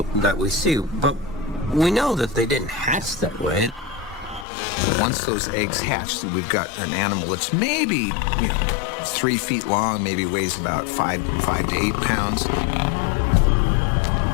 see. But we know that they didn't hatch that way. Once those eggs hatch, then we've got an animal that's maybe 3 feet long, maybe weighs about 5 to 8 pounds.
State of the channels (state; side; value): drops out; right; at 4.5 s